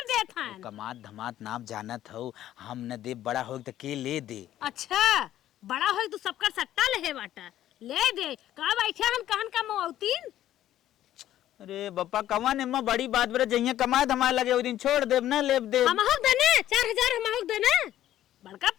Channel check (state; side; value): quieter; right; 12.6 dB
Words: देत हैं। कमात धमात नाम जानत हो हम न दे बड़ा हो तो के ले दे। अच्छा बड़ा हो तो सबका सट्टा ले बाटा ले दे का बैठे हम कहन का मौतीन। अरे बप्पा कमा ने मां बड़ी बात बरे जइया कमाए धमाए लगे ओ दिन छोड़ देब ना लेब दे हम हक देने 4000 हम हक देने बड़का